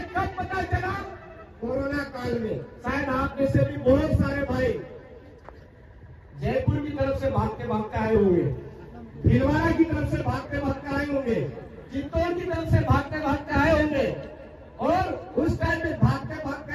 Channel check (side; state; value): both; identical; correlation 1.00